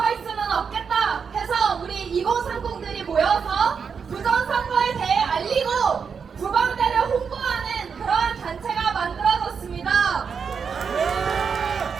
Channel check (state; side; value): quieter; left; 6.2 dB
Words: 수는 없겠다 해서 우리 2030들이 모여서 부정선거에 대해 알리고 부방대를 홍보하는 그러한 단체가 만들어졌습니다.